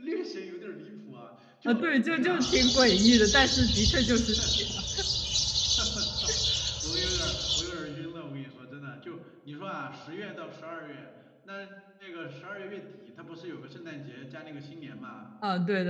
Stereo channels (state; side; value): identical; both; correlation 1.00